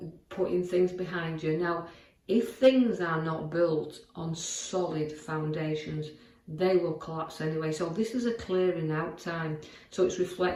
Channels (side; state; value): both; identical; correlation 1.00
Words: putting things behind you. Now, if things are not built on solid foundations, they will collapse anyway. So this is a clearing out time. So it's